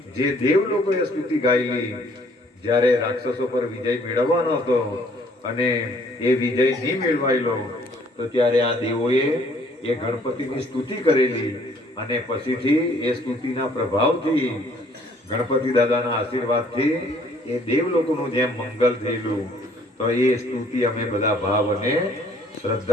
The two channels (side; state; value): both; normal; correlation 0.60